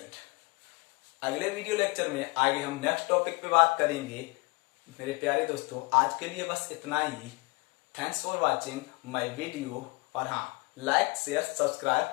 अगले वीडियो लेक्चर में आगे हम नेक्स्ट टॉपिक पे बात करेंगे। मेरे प्यारे दोस्तों, आज के लिए बस इतना ही। Thanks for watching my video. और हाँ, like share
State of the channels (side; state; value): right; quieter; 27.0 dB